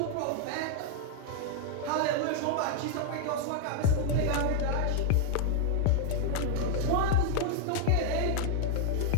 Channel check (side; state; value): both; different; correlation 0.00